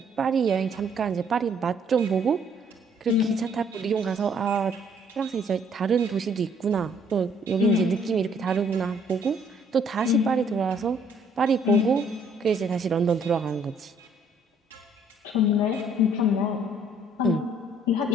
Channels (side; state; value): both; normal; correlation 0.63